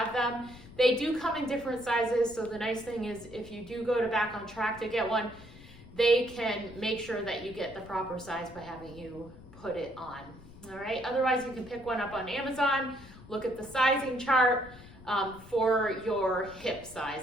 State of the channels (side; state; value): left; noise; rumble, 19 dB below the sound